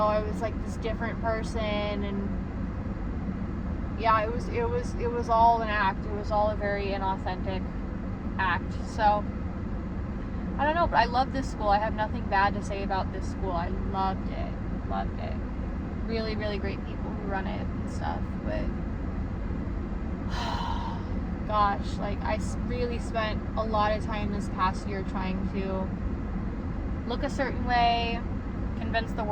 I was, like, this different person, and yeah, it was all an act. It was all a very inauthentic act. So I don't know, but I love this school. I have nothing bad to say about this school. I loved it. Really, really great people who run it and stuff. But gosh, like, I really spent a lot of time this past year trying to look a certain way, convince the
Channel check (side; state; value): both; identical; correlation 1.00